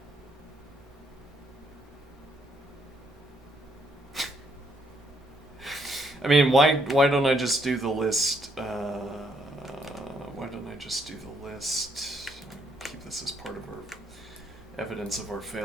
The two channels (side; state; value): both; normal; correlation 0.72